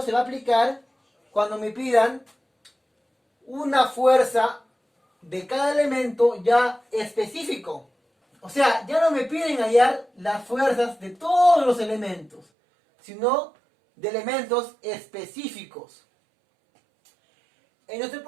se va a aplicar cuando me pidan una fuerza de cada elemento ya específico. O sea, ya no me piden hallar las fuerzas de todos los elementos, sino de elementos específicos. En nuestro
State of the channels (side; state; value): left; drops out; at 12.5 s